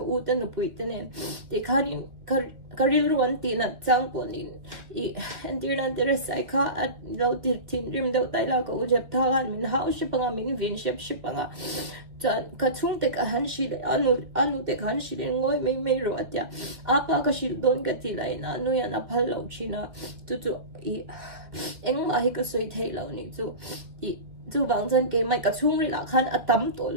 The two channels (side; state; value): left; late; 1.8 ms